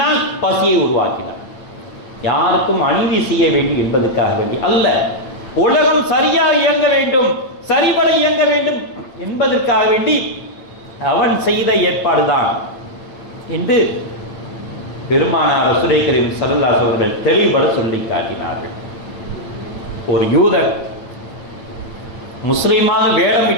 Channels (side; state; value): right; late; 9.0 ms